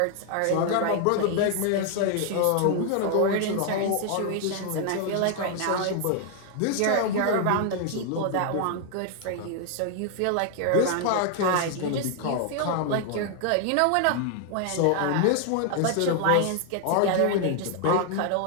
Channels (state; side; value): different; both; correlation 0.00